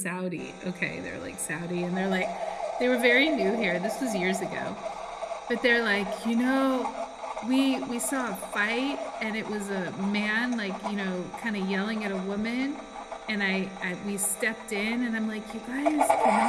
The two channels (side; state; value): both; identical; correlation 1.00